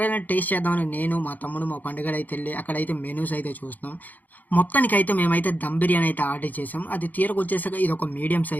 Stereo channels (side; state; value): right; late; 0.082 ms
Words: టేస్ట్ చేద్దామని నేను, మా తమ్ముడు, మా పండుగాడైతే ఎళ్లి అక్కడైతే మెనూస్ అయితే చూస్తున్నాం. మొత్తానికైతే మేమైతే దమ్ బిర్యానీ అయితే ఆర్డర్ చేసాం. అది తీరకొచ్చేసాక ఇదొక మీడియం